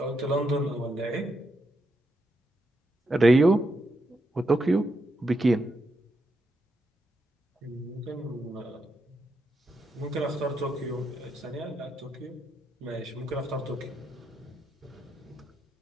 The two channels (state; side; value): normal; both; correlation 0.82